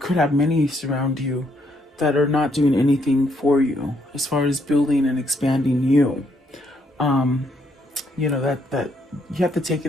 have many surround you that are not doing anything for you as far as building and expanding you. You know, that you have to take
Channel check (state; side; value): normal; both; correlation 0.72